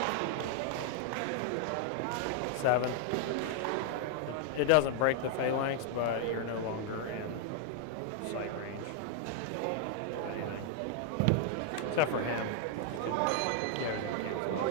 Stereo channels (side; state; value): both; different; correlation -0.01